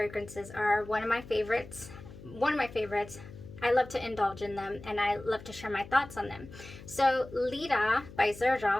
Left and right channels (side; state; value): left; noise; hum, 16 dB below the sound